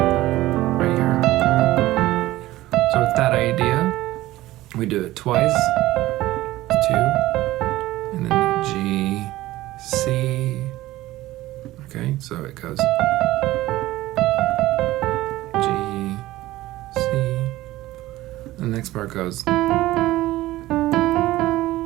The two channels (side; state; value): left; quieter; 16.7 dB